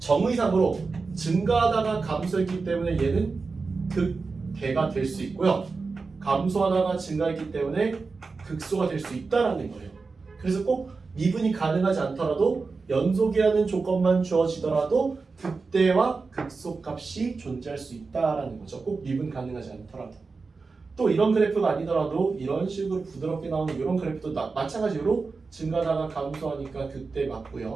증가하다가 감소했기 때문에 얘는 극대가 될 수 있고요. 감소하다가 증가했기 때문에 극소가 될 수 있다라는 거예요. 그래서 꼭 미분이 가능하지 않더라도 연속이라는 조건만 주어지더라도 극대와 극소값이 존재할 수 있다라는 거죠. 꼭 미분 가능하지 않더라도. 또 이런 그래프가 아니더라도 이런 식으로 부드럽게 나오는 이런 그래프도 마찬가지로 증가하다가 감소하니까 극대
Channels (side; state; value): left; quieter; 4.3 dB